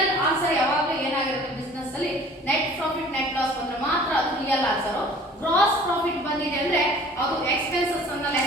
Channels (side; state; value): both; normal; correlation 0.49